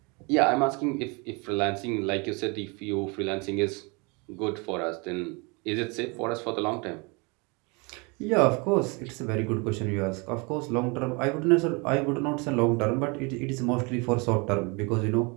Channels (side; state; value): left; quieter; 29.8 dB